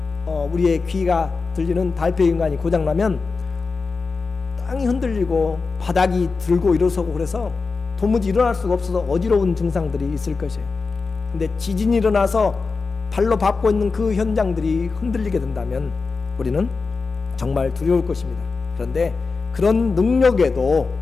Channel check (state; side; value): quieter; right; 4.4 dB